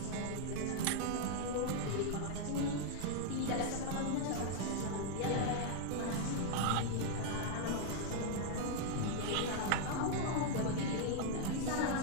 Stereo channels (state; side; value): different; both; correlation 0.00